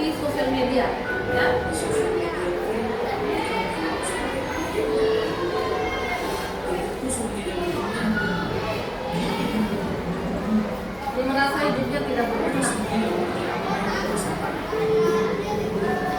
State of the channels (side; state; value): both; identical; correlation 1.00